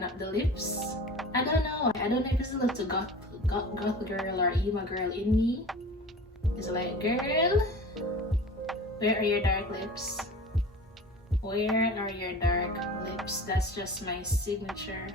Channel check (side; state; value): both; normal; correlation 0.38